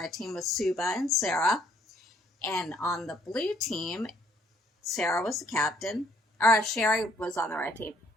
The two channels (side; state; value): both; normal; correlation 0.65